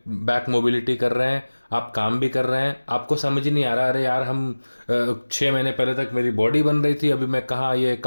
बैक मोबिलिटी कर रहे हैं, आप काम भी कर रहे हैं, आपको समझ ही नहीं आ रहा अरे यार हम 6 महीने पहले तक मेरी बॉडी बन रही थी, अभी मैं कहाँ ये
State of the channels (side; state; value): both; inverted; correlation -1.00